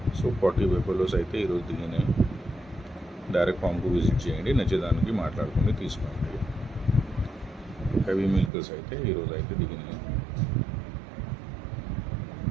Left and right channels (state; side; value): drops out; left; at 8.5 s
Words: సో 40 బెఫలోస్ అయితే ఈరోజు దిగినాయి. డైరెక్ట్ ఫామ్కు విజిట్ చేయండి, నచ్చేదానికి మాట్లాడుకుని తీసుకోండి. హెవీ మిల్కర్స్ అయితే ఈరోజు అయితే దిగినాయి.